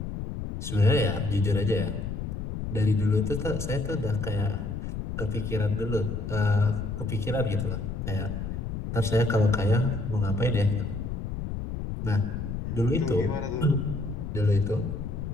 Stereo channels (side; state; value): left; noise; rumble, 5 dB below the sound